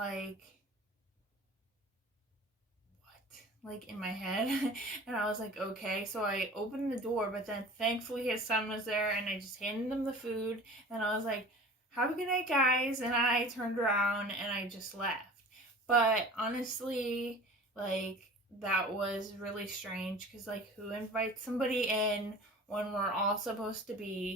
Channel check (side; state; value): both; normal; correlation 0.41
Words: what? In my head. And I was like, okay. So I opened the door, but then thankfully his son was there, and I just handed him the food. And I was like, have a good night, guys. And I turned around and I just left. But honestly, that was really strange, because who invites somebody in when we're all supposed to